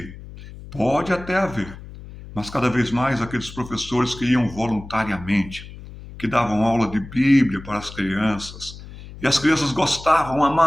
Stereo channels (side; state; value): left; noise; hum, 15 dB below the sound